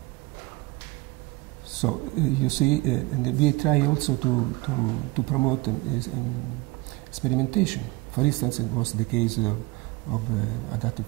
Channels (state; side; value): quieter; left; 22.2 dB